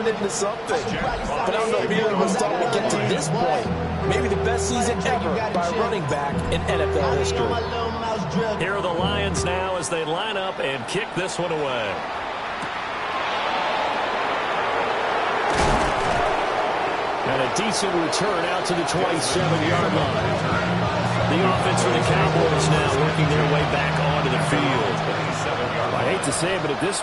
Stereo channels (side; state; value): both; identical; correlation 1.00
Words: into something. But I don't know if either of us thought we'd get to this point. Maybe the best season ever by a running back in NFL history. Here are the Lions now as they line up and kick this one away. And a decent return out to the 27-yard line. The offense for the Cowboys now working their way back onto the field. I hate to say it, but at this